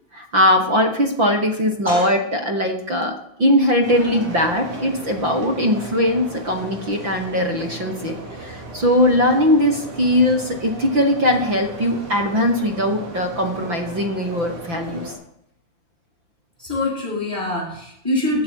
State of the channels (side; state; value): left; late; 5.9 ms